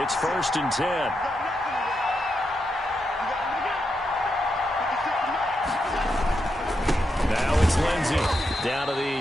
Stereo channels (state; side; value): normal; both; correlation 0.84